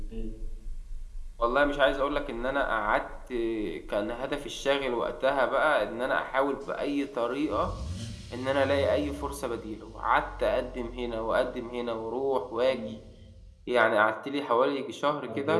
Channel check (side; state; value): both; identical; correlation 1.00